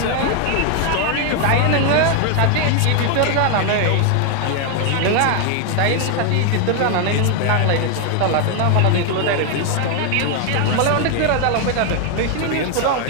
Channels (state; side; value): different; both; correlation 0.01